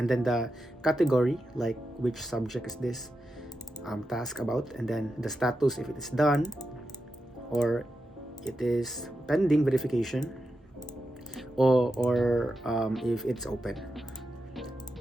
then the category, like which subject is this task about, and then the status if it is done or it is pending verification, or if it's open.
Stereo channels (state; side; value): normal; both; correlation 0.88